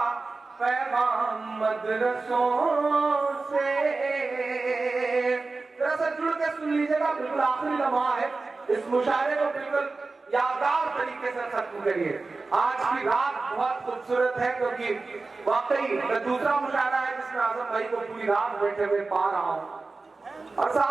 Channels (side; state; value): left; quieter; 3.8 dB